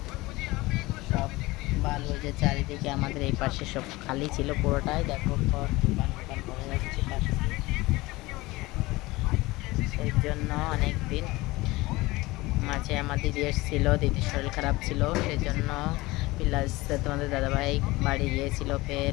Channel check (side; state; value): right; quieter; 20.8 dB